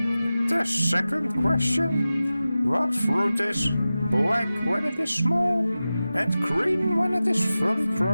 The second question. What fruit is black when it is small and green when it is fully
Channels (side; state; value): both; inverted; correlation -0.95